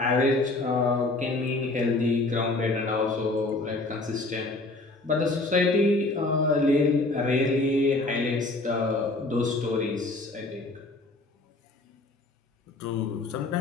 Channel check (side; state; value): right; quieter; 3.0 dB